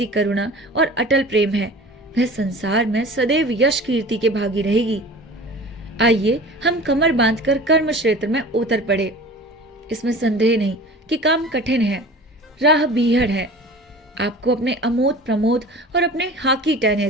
करुणा और अटल प्रेम है, वह संसार में सदैव यश कीर्ति के भागी रहेगी। आइए हम कमर बांधकर कर्म क्षेत्र में उतर पड़े। इसमें संदेह नहीं कि काम कठिन है, राह बीहड़ है। आपको अपने अमोद प्रमोद और अपने हॉकी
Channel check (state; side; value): normal; both; correlation 0.40